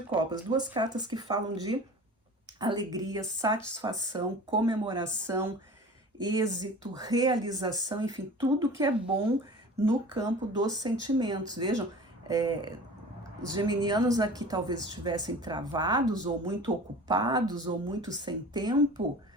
copas. 2 cartas que falam de alegria, satisfação, comemoração, êxito, realização, enfim, tudo que é bom no campo dos sentimentos. Vejam, os geminianos aqui talvez estivessem travados, ou muito ocupados, ou muito sem tempo,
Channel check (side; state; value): both; normal; correlation 0.40